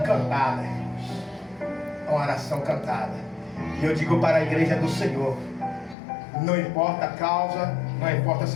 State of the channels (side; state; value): right; drops out; at 6.0 s